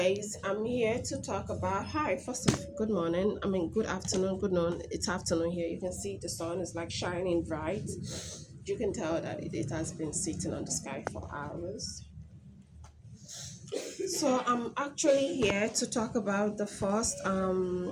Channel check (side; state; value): both; identical; correlation 1.00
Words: I'm here to talk about hi. First of good morning. I mean good afternoon, good noon. It's afternoon here. You can see the sun is like shining bright. You can tell that it has been sitting on the sky for hours. So I'm actually here to talk about the first